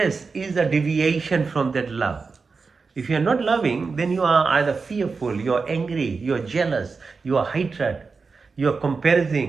is a deviation from that love. If you are not loving, then you are either fearful, you are angry, you are jealous, you are hatred, you are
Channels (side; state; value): left; quieter; 4.6 dB